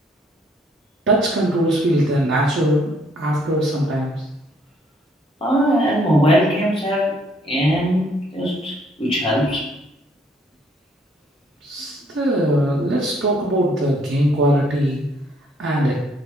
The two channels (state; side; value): normal; both; correlation 0.66